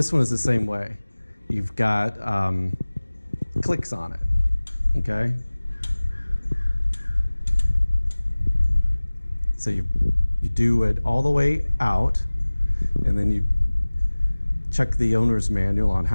one is the same way. You've got clicks on it, okay? So you do it all the way out, and then you check the owner's manual on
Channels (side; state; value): both; inverted; correlation -1.00